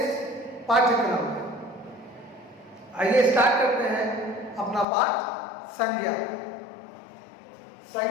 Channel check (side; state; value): right; drops out; at 4.9 s